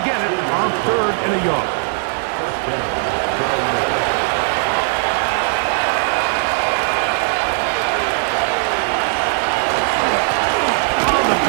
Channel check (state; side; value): silent; left; 61 dB below the other